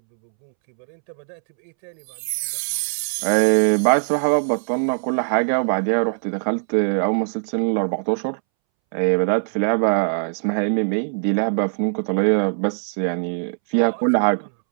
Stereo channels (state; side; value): silent; left; 65 dB below the other